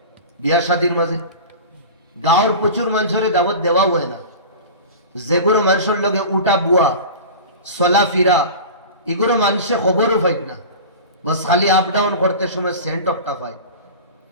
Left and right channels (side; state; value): both; inverted; correlation -0.34